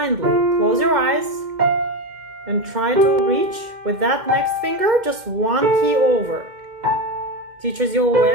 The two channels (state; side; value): late; left; 2.1 ms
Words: Close your eyes and try to reach with that next finger just one key over. Teaches you